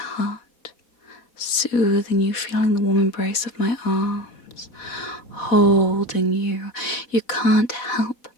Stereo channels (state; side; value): late; right; 4.1 ms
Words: soothing you, feeling the warm embrace of my arms, holding you. You can't help